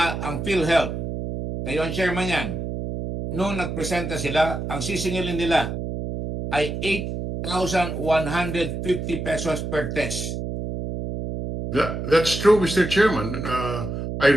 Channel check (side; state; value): right; noise; hum, 4 dB below the sound